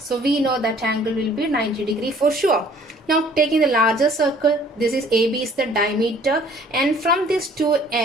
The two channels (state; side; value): normal; both; correlation 0.55